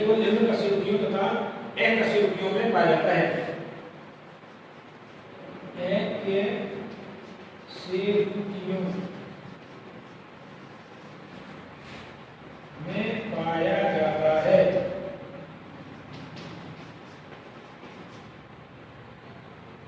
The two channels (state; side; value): identical; both; correlation 1.00